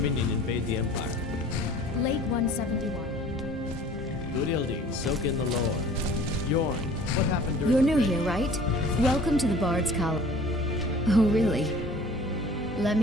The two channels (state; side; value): normal; both; correlation 0.48